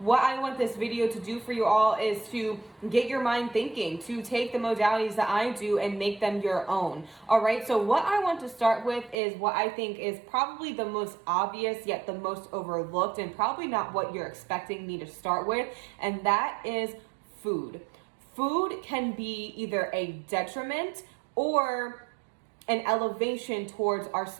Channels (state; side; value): drops out; left; at 9.2 s